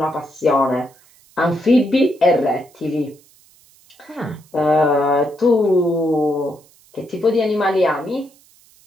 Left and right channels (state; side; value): noise; right; hiss, 29 dB below the sound